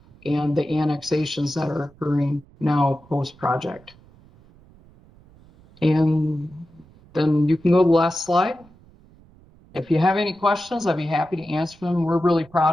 and the annexations that are occurring now post-project. And then you can go to the last slide. If you have any questions, I'd be happy to answer them. We're really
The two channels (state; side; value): noise; right; rumble, 26 dB below the sound